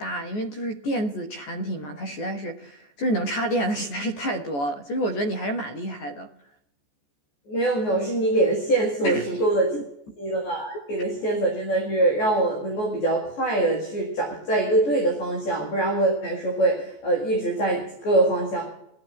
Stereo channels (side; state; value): right; late; 14 ms